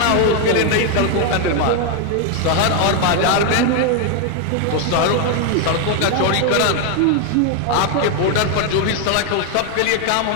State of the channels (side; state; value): both; different; correlation 0.01